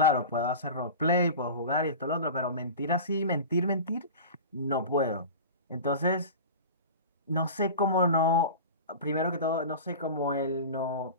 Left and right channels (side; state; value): both; inverted; correlation -0.32